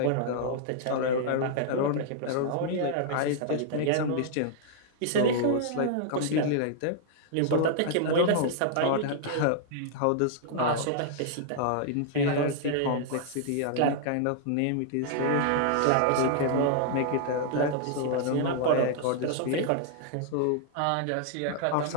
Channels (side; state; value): both; different; correlation -0.01